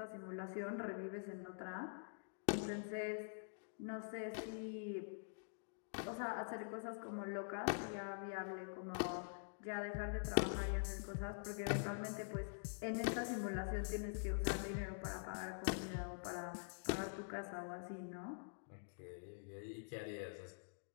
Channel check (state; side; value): silent; right; digital silence